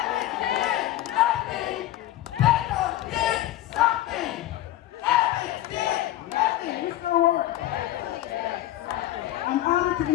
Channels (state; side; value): quieter; right; 14.3 dB